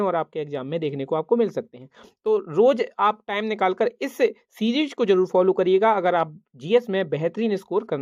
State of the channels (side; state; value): both; identical; correlation 1.00